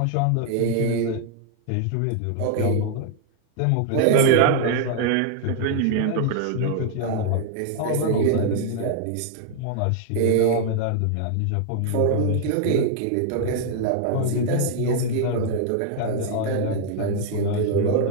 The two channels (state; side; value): different; both; correlation 0.00